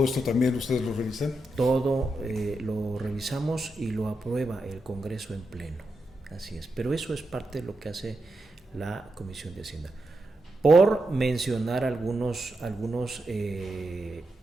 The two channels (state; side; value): normal; both; correlation 0.86